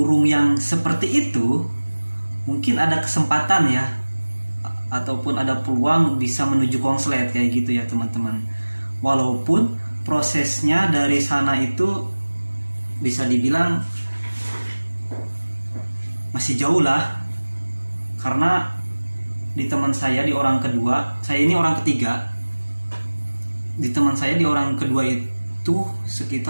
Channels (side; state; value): both; inverted; correlation -1.00